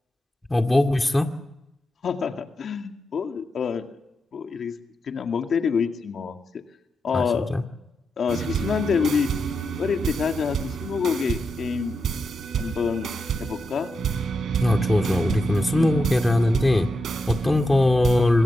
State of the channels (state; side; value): normal; both; correlation 0.86